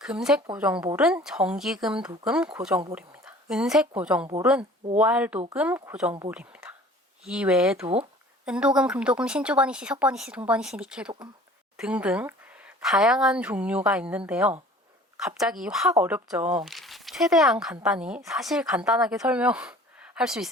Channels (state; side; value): normal; both; correlation 0.48